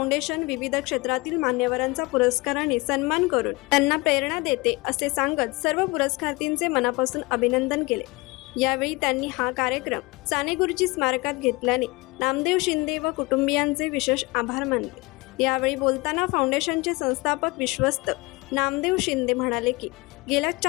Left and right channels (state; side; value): quieter; right; 24.4 dB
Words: विविध क्षेत्रातील मान्यवरांचा पुरस्काराने सन्मान करून त्यांना प्रेरणा देते असे सांगत सर्व पुरस्कारार्थींचे मनापासून अभिनंदन केले। यावेळी त्यांनी हा कार्यक्रम सानेगुरुजी स्मारकात घेतल्याने नामदेव शिंदे व कुटुंबियांचे विशेष आभार मानले। यावेळी बोलताना फाउंडेशनचे संस्थापक विश्वस्त नामदेव शिंदे म्हणाले की गेल्या